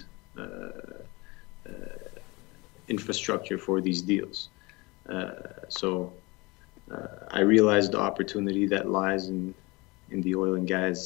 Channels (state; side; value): quieter; right; 24.6 dB